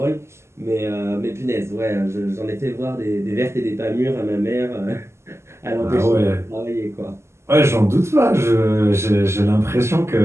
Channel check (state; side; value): late; left; 0.13 ms